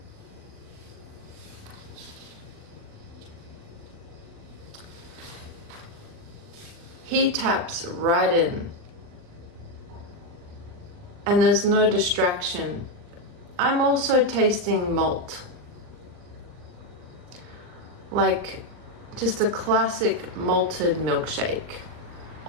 He taps right in, and there's no distraction. I'm also tasting malt, like just a classic malted milkshake.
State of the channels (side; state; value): left; late; 39 ms